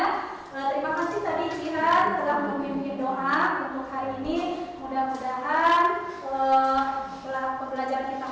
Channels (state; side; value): identical; both; correlation 1.00